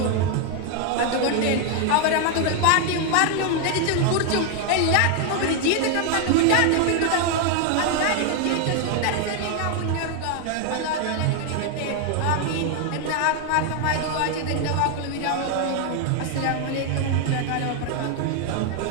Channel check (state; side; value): different; both; correlation 0.01